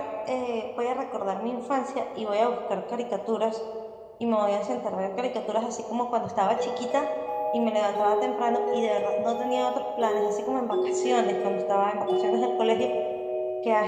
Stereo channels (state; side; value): identical; both; correlation 1.00